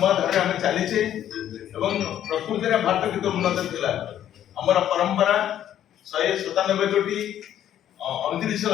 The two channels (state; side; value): quieter; right; 11.0 dB